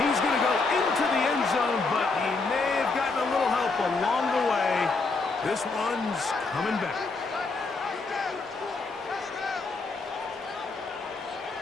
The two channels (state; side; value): quieter; right; 3.9 dB